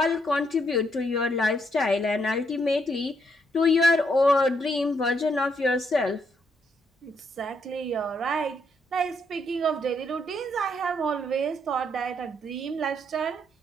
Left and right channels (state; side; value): normal; both; correlation 0.75